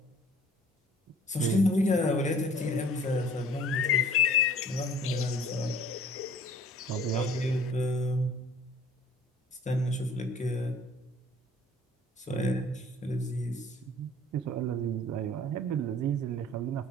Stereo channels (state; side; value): normal; both; correlation 0.51